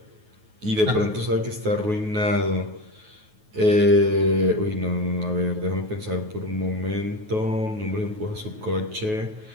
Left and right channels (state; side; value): late; left; 9.4 ms